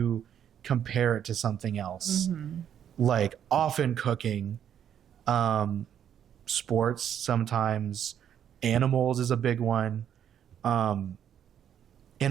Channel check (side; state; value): left; quieter; 9.3 dB